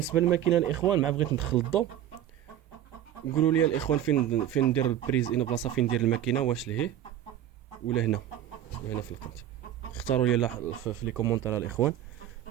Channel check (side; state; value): left; quieter; 11.4 dB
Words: للماكينه الاخوان مع بغيت ندخل الضو قولوا لي الاخوان فين ندير البريز ان بلاصه فين ندير الماكينه واش لهيه ولا هنا في القنت. اختاروا لي في لي كومونتير الاخوان